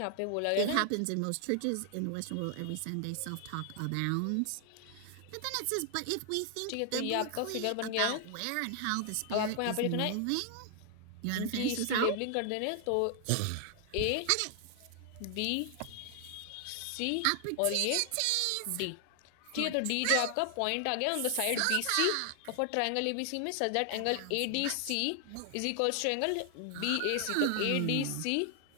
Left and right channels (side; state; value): both; different; correlation 0.00